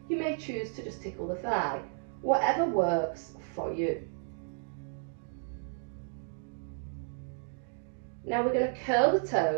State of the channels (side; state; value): left; silent; digital silence